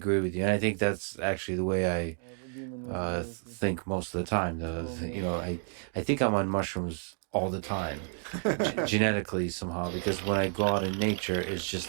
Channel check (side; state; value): left; silent; 57 dB below the other